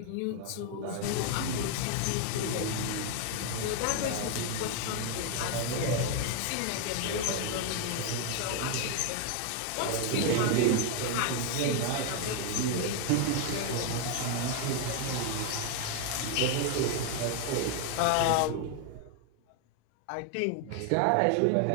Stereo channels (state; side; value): different; both; correlation 0.01